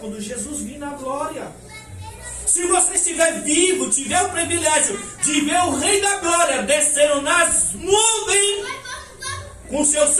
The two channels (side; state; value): both; identical; correlation 1.00